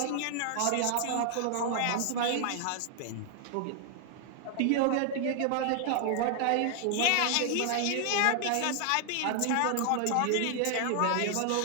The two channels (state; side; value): different; both; correlation 0.00